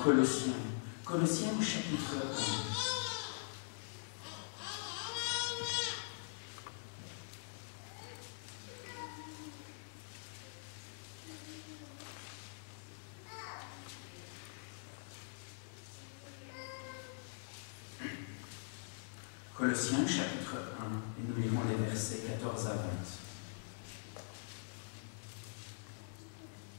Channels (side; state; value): right; silent; digital silence